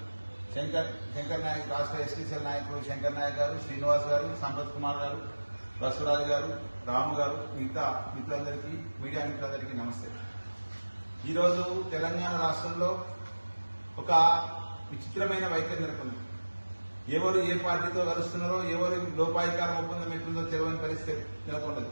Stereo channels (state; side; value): inverted; both; correlation -1.00